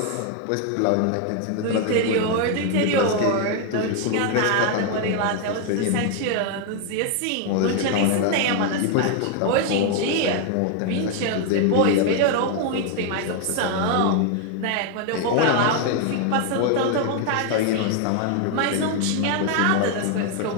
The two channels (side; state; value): both; different; correlation 0.01